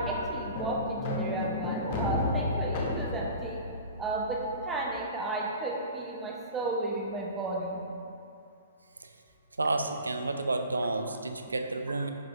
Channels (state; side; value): inverted; both; correlation -0.40